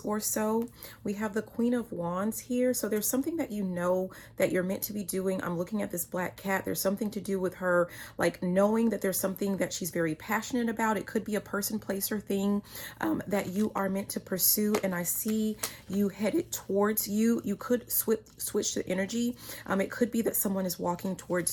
so. We have the Queen of Wands here. So there's something that you know that you're meant to be doing. I'm looking at this black cat. There's something to do with her, like knowing that there's something that she's very passionate about. It could be a person, place, or thing that you are meant to pursue. And I see you headed towards you. You could switch the energy. It could be that someone is walking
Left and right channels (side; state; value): both; identical; correlation 1.00